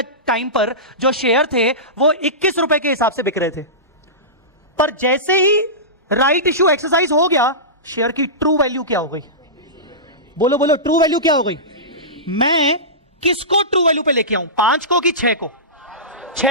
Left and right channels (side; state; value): both; normal; correlation -0.20